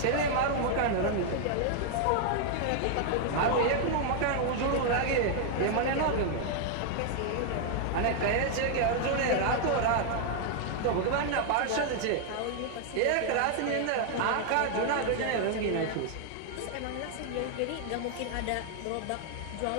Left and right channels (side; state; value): both; different; correlation 0.00